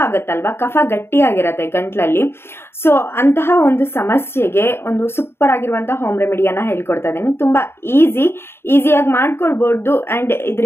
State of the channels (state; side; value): late; right; 0.12 ms